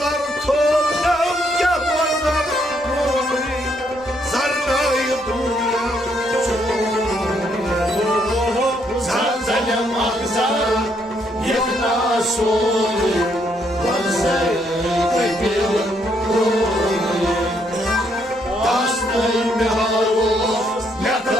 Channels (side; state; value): both; normal; correlation 0.72